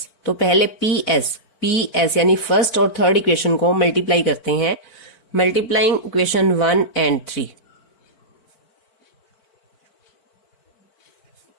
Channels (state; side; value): late; right; 4.5 ms